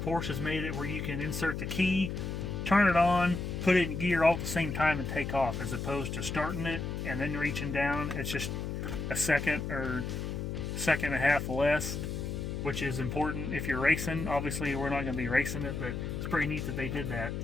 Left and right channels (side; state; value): left; noise; hum, 4 dB below the sound